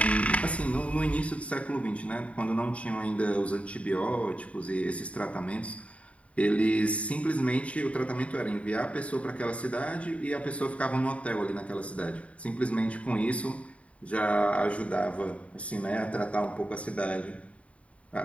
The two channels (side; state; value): right; late; 0.065 ms